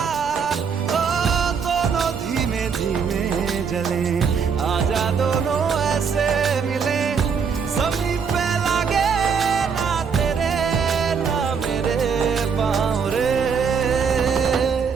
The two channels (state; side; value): quieter; left; 6.2 dB